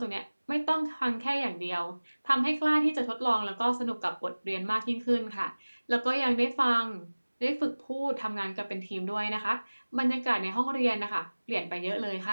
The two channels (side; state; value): both; inverted; correlation -1.00